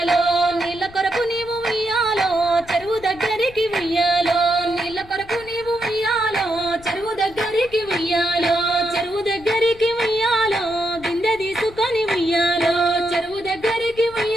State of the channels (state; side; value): noise; left; rumble, 21 dB below the sound